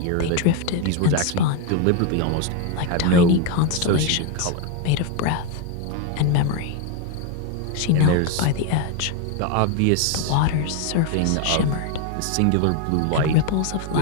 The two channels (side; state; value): both; different; correlation 0.01